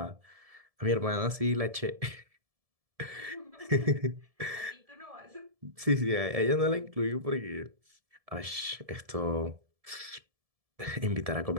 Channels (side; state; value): left; late; 1.7 ms